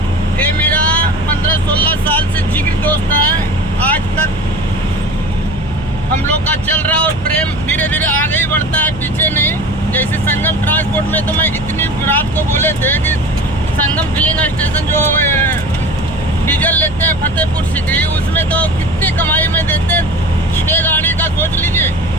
ये मेरा 15-16 साल से जिगरी दोस्त है। आज तक हम लोग का चल रहा और प्रेम धीरे धीरे आगे ही बढ़ता है, पीछे नहीं। जैसे संगम ट्रांसपोर्ट में तो मैं इतनी रात को बोले थे कि संगम फिलिंग स्टेशन जो डीजल लेते हैं फतेहपुर सिकरी, उसमें तो कितनी कमाई में देते हैं। 6 गाड़ी का सोच लीजिए,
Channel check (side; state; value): right; noise; hum, 14 dB below the sound